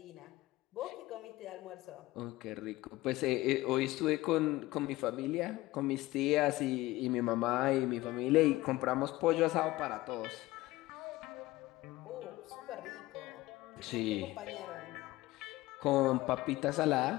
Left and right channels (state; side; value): quieter; right; 18.5 dB